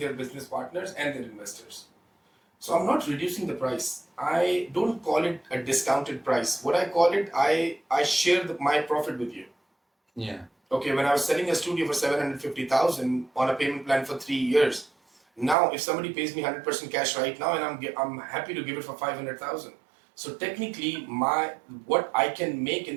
business partners and their investors. So I'm not reducing the price. I don't call it a discounted price. What I call it, I share my profit with you. Yeah. Okay, when I was selling a studio for 750,000 on a payment plan for 3 years, now if somebody pays me 100% cash right now, and I'm happy to give it for 500,000. So technically, what I can make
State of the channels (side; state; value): left; drops out; at 15.6 s